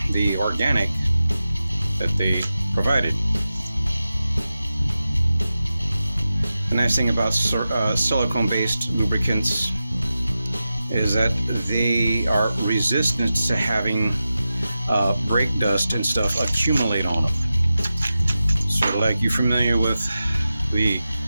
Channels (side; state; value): both; inverted; correlation -0.92